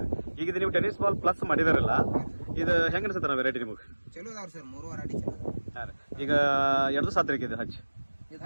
ಈಗ ಇದು ನೀವು ಟೆನಿಸ್ ಬಾಲ್ ಪ್ಲಸ್ ಮಾಡಿದಾರಲ್ಲ, ಇದು ಹೆಂಗ ಅನ್ಸುತ್ತೆ ವೆರೈಟಿ ನಿಮಗೆ? ಚಲೋ ಅದಾವ್ರಿ ಸರ್. 3 ವೆರೈಟಿ ಚಲೋ ಅದಾವ. ಹಾಂ ರೀ. ಈಗ ಎರಡು ಸಾತ್ರಿಕೆ ಇದೆ ಹಚ್ಚಿ? ಇದು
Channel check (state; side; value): inverted; both; correlation -1.00